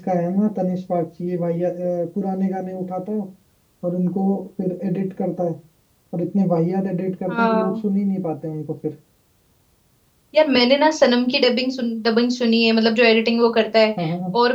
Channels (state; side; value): identical; both; correlation 1.00